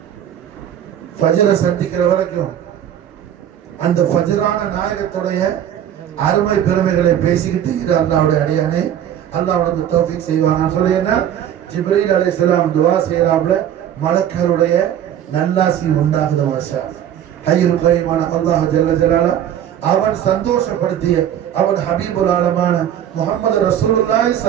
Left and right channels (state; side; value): quieter; left; 10.3 dB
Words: ஃபஜ்ரை சந்திக்கிற வரைக்கும் அந்த ஃபஜ்ரான நாயகத்துடைய அருமை பெருமைகளை பேசிக்கிட்டு இரு அல்லாஹ்வுடைய அடியானே, அல்லாஹ் உனக்கு தௌஃபீக் செய்வானா சொல்லி என்ன ஜிப்ரீல் அலைஹிஸ்ஸலாம் துஆ செய்யறாப்ல, மலக்குகளுடைய நல்லாசி உண்டாகுது மாஷா. ஹய்யுல் கய்யூமான அல்லாஹ் ஜல்ல ஜலாலா அவன் சந்தோஷப்படுத்திய அவன் ஹபீபுல் ஆலமான முஹம்மது ரசூலுல்லாஹி